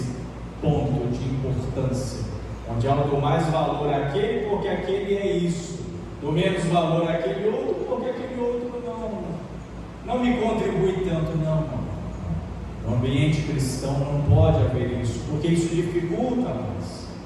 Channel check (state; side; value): identical; both; correlation 1.00